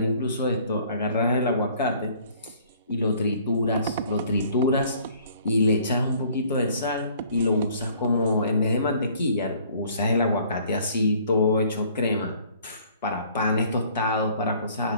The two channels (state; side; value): inverted; both; correlation -0.57